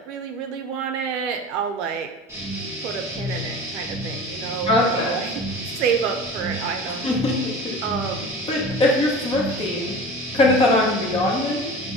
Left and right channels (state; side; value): normal; both; correlation 0.37